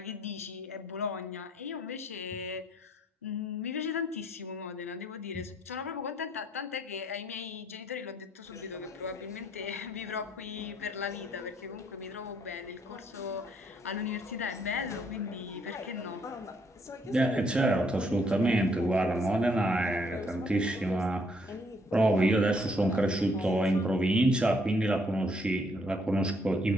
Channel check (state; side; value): normal; both; correlation 0.69